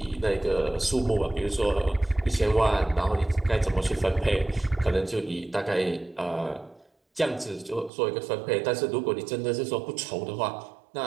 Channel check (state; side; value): drops out; left; at 7.9 s